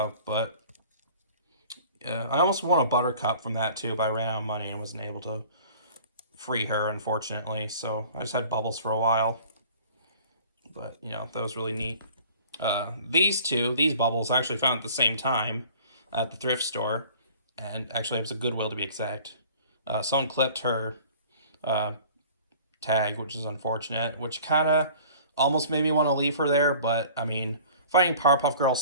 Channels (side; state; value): both; inverted; correlation -0.48